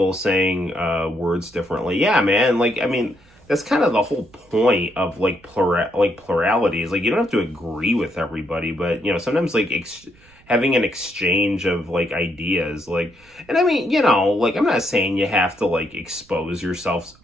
saying words differently. Yeah, man, like, I mean, that's kind of the whole point of like plurality is like, you don't have to agree with everybody, but you know, sometimes like having an exchange of like ideas, like, and I mean, you know, like, I'm not saying you have to like expose yourself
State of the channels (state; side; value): noise; right; rumble, 29 dB below the sound